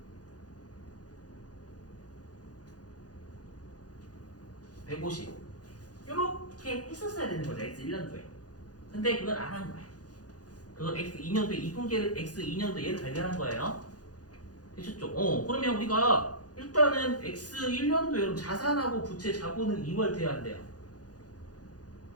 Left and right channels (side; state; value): right; late; 0.68 ms